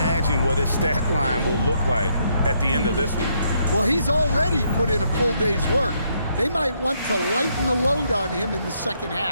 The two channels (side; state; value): both; inverted; correlation -0.73